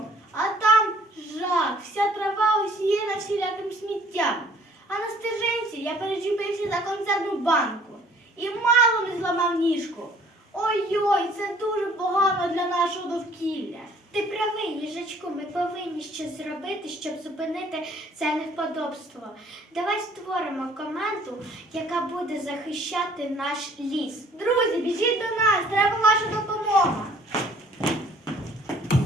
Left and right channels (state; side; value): normal; both; correlation 0.57